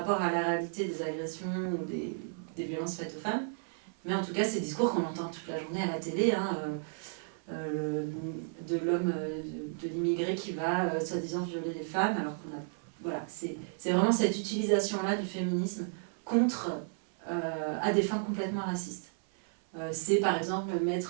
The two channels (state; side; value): silent; left; 56 dB below the other